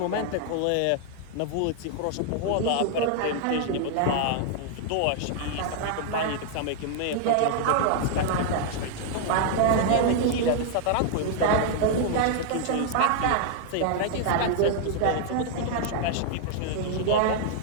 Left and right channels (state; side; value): different; both; correlation 0.00